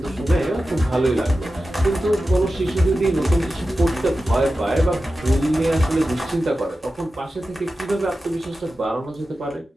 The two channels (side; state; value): both; normal; correlation 0.93